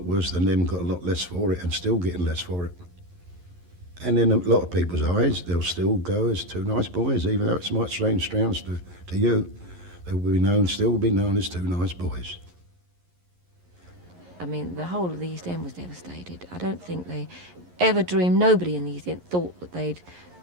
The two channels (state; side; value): late; left; 11 ms